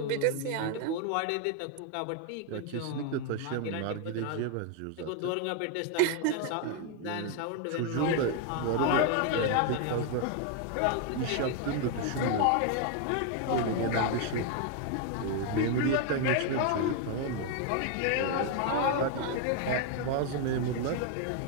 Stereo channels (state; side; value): different; both; correlation 0.01